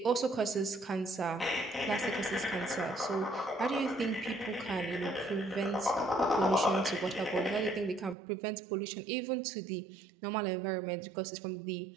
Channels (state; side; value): drops out; left; at 8.2 s